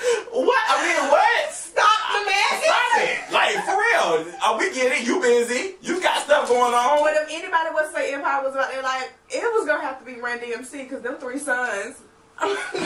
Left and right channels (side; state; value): both; identical; correlation 1.00